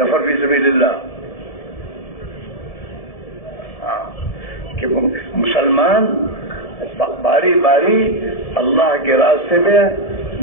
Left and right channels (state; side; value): late; right; 1.7 ms